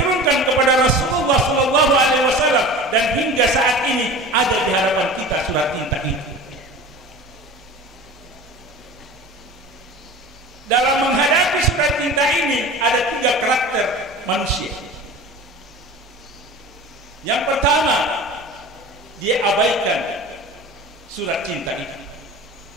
kepada Rasulullah SAW, dan hingga saat ini ada di hadapan kita surat cinta itu. Dalam menghadapi surat cinta ini ada 3 karakter manusia. Yang pertama, dia abaikan surat cinta itu.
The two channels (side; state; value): both; normal; correlation 0.36